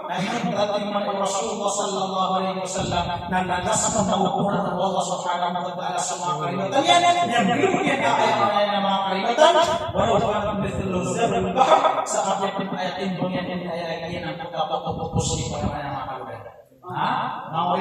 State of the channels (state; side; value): identical; both; correlation 1.00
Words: Nah ini berarti Rasulullah sallallahu alaihi wasallam dan nasabah mengukuran Allah subhanahu wa ta'ala semua kalimatnya yang belum kita ayat nama kalimatan walau kanat mithlu zabal al-bahr saat yang ayat ini ayat ini nanti dapat fokus di pada nama kalimatan. Mau